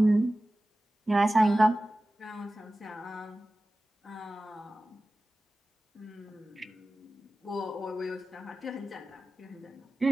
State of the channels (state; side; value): normal; both; correlation 0.96